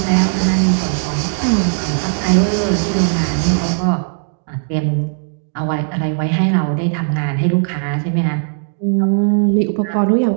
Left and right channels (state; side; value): silent; left; digital silence